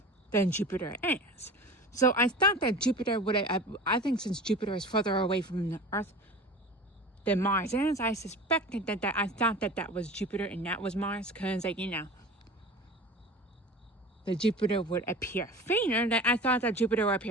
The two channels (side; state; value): both; normal; correlation 0.36